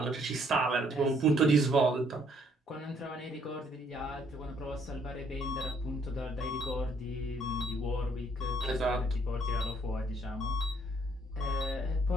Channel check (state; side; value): normal; both; correlation 0.66